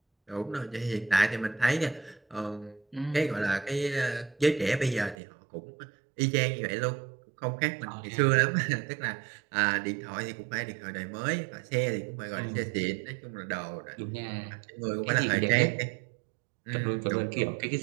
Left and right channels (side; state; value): left; drops out; at 5.2 s